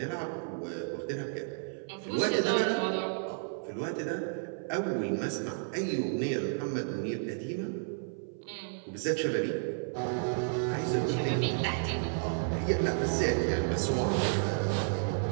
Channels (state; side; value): silent; left; 56 dB below the other